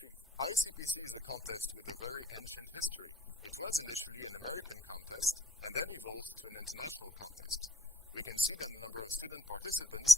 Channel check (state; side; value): normal; both; correlation 0.66